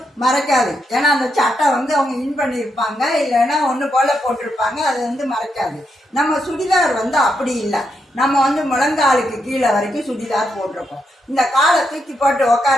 மறைக்காது. ஏன்னா அந்த சட்டை அவங்க இன் பண்ணியிருப்பாங்க, இல்லைன்னா ஒன்று போல போட்டிருப்பாங்க, அது மறைக்காது. நம்ம சுடிதார் அப்படி இல்லை. நம்ம முழங்காலுக்கு கீழே வரைக்கும் சுடிதார் போட்டிருக்கோம். இந்த காலை தூக்கி போட்டு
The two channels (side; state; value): both; normal; correlation 0.82